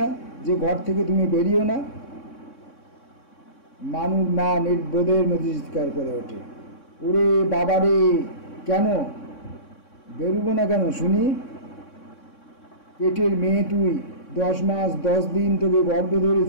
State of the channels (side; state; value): right; late; 3.6 ms